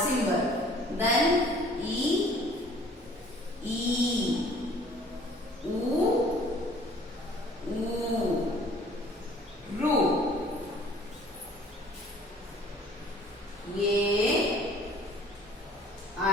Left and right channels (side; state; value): both; normal; correlation 0.54